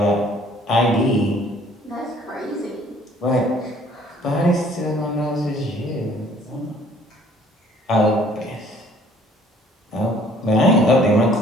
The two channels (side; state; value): both; normal; correlation 0.57